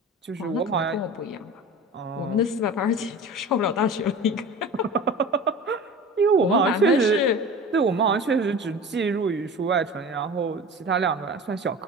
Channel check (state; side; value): normal; both; correlation 0.36